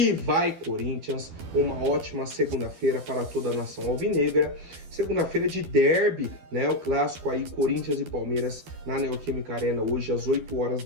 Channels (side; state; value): left; late; 12 ms